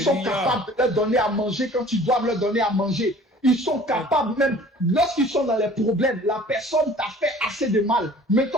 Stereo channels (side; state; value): both; normal; correlation 0.49